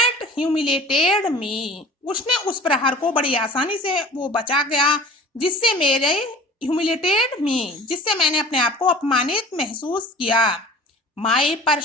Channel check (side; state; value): both; normal; correlation 0.43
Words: humiliated me, उसने उस प्रहार को बड़ी आसानी से वो बचा गया, जिससे मेरे ह्यूमिलेटेड मी, जिससे मैंने अपने आप को अपमानित महसूस किया। My